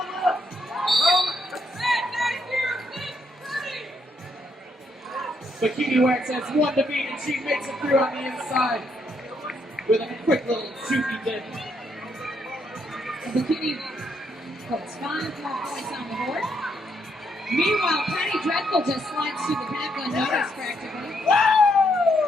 But Kiwiwax has 1 to beat, and she makes it through on the inside with a quick little shooty dip. Bikini puts 5 more points on the board. Meanwhile, Penny Dreadful just slides through the pack unnoticed practically.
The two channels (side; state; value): both; normal; correlation 0.75